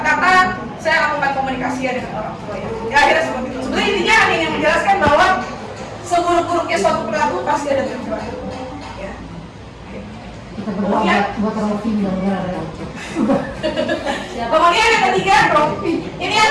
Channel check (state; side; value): identical; both; correlation 1.00